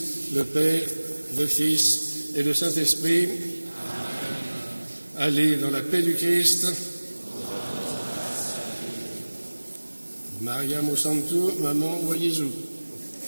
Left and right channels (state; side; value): inverted; both; correlation -1.00